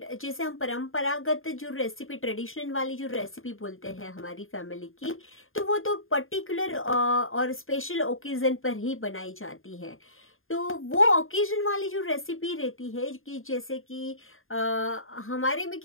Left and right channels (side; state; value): right; late; 0.60 ms